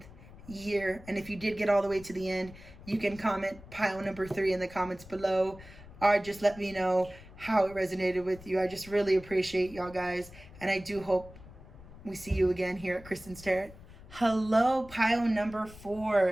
year. And if you did get all the way to the end, you can comment pile number 3 in the comments below. Or just let me know how it resonated with you. I just really appreciate y'all guys. And I do hope we see you again here at Kristen's Tarot. Hello, pile number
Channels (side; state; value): left; noise; rumble, 18 dB below the sound